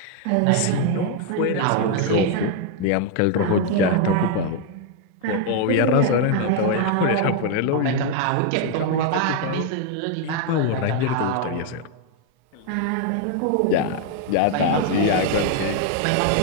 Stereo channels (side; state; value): both; different; correlation 0.00